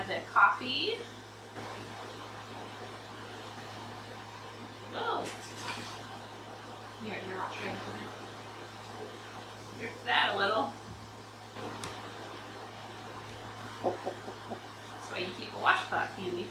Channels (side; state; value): both; identical; correlation 1.00